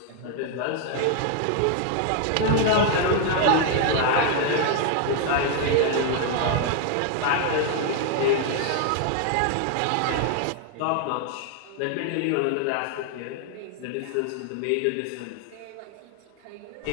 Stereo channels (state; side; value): different; both; correlation 0.00